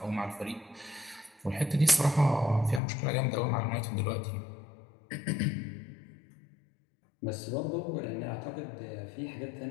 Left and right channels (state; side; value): drops out; right; at 2.8 s